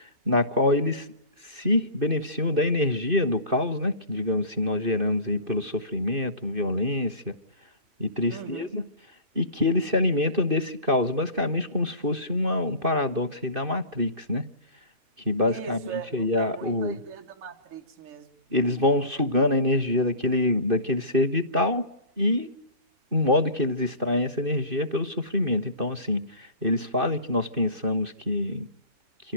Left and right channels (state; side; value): late; left; 2.6 ms